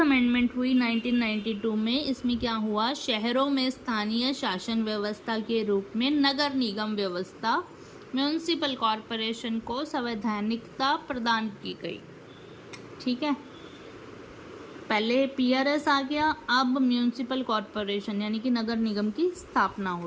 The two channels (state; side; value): identical; both; correlation 1.00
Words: अमेंडमेंट हुई 1992 में। इसमें क्या हुआ, शहरों में स्थानीय शासन व्यवस्था के रूप में नगर निगम व्यवस्था म्यूनिसिपल कॉरपोरेशन को संवैधानिकता प्रदान की गई। ठीक है, पहले PRS आ गया, अब म्यूनिसिपल कॉरपोरेशन यानी कि नगर निगम की स्थापना